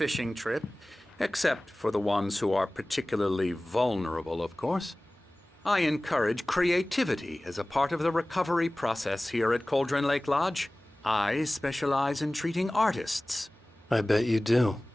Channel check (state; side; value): normal; both; correlation 0.98